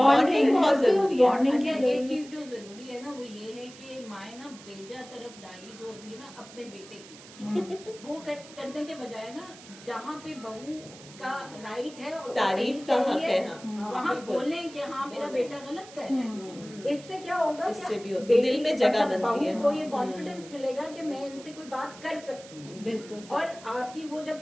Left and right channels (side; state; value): right; noise; hiss, 19 dB below the sound